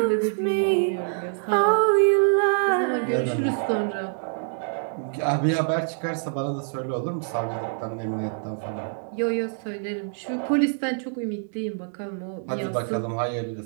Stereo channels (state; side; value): silent; left; digital silence